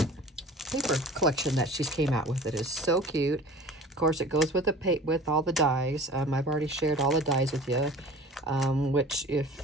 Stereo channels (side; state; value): both; normal; correlation 0.42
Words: paper collection that she's came out with. It is so cute. Of course, it goes with with all the dies. I've already shared all the dies with you, which